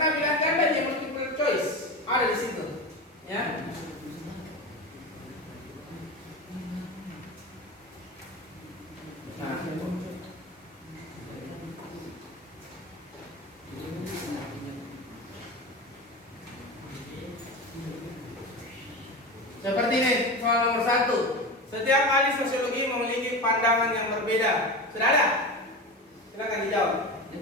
pilihan ganda dia multiple choice ada di situ, ya. Nah, Seperti ini, soal nomor 1. Setiap ahli sosiologi memiliki pandangan yang berbeda. Sudah ada? Silakan dijawab.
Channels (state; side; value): normal; both; correlation 0.25